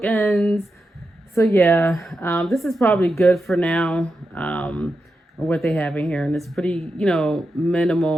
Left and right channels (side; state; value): both; normal; correlation 0.88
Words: So yeah, this is probably good for now. What they have in here, and it's pretty,